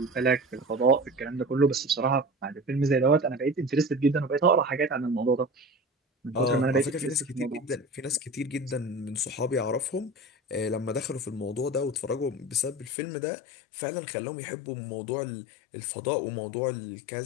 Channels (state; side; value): drops out; right; at 12.9 s